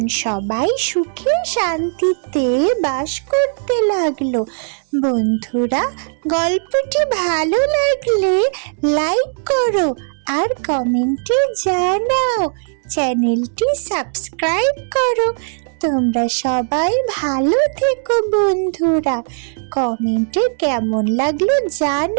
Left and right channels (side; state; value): left; silent; 63 dB below the other